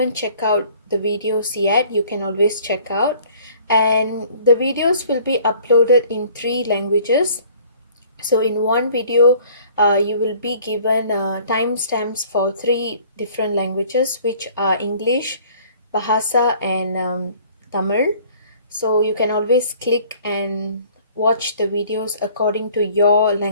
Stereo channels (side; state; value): both; inverted; correlation -0.54